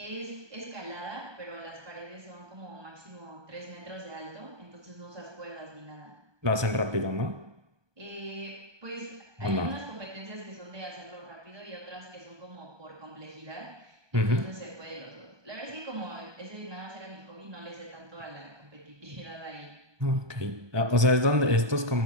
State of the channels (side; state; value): left; late; 1.2 ms